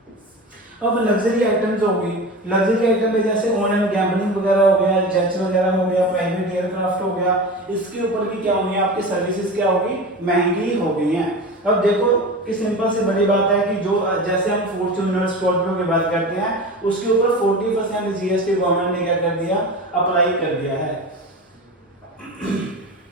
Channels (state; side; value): normal; both; correlation 0.30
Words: अब लग्जरी आइटम्स होगी, लग्जरी आइटम में जैसे ऑनलाइन गैम्बलिंग वगैरह हो गया, जेट्स वगैरह हो गया, प्राइवेट एयरक्राफ्ट हो गया, इसके ऊपर भी क्या होंगी आपकी सर्विसेज क्या होगी महंगी हो गई हैं। अब देखो कि सिंपल से बड़ी बात है कि जो जैसे हम फॉर्च्यूनर स्कॉर्पियो की बात करते हैं उसके ऊपर 40% जीएसटी गवर्नमेंट ने क्या कर दिया अप्लाई कर दिया है।